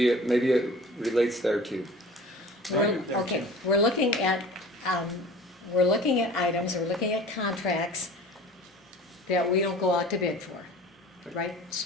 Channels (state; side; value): normal; both; correlation 0.42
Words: it relates there too. Okay, we're looking at items, we're looking at contracts that we don't go out to bid for, right?